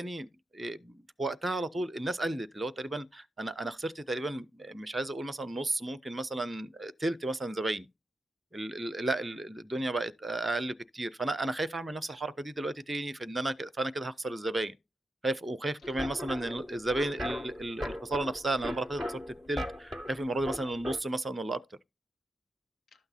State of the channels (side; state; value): both; normal; correlation 0.87